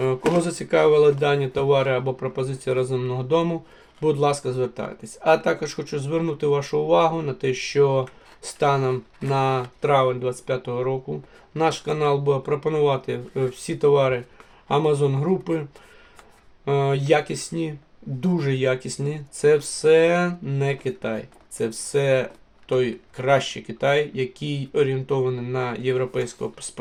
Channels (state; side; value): identical; both; correlation 1.00